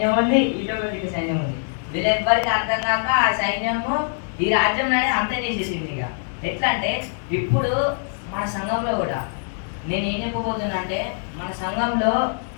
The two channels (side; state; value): right; silent; digital silence